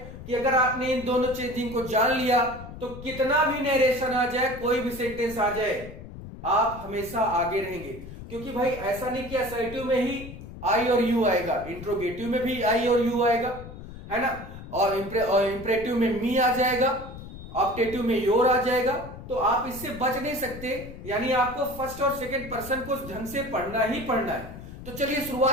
कि अगर आपने इन दोनों चेंजिंग को जान लिया तो कितना भी नरेशन आ जाए, कोई भी सेंटेंस आ जाए, आप हमेशा आगे रहेंगे। क्योंकि भाई ऐसा नहीं कि असर्टिव में ही आई और यू आएगा, इंट्रोगेटिव में भी आई और यू आएगा, है ना। और इंप्रेटिव में मी आ जाएगा, ऑप्टेटिव में योर आ जाएगा। तो आप इससे बच नहीं सकते, यानी आपको फर्स्ट और सेकंड पर्सन को ढंग से पढ़ना ही पढ़ना है। तो चलिए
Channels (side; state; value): left; noise; rumble, 13 dB below the sound